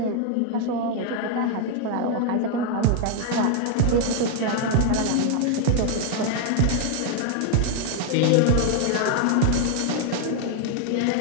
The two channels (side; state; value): both; different; correlation 0.00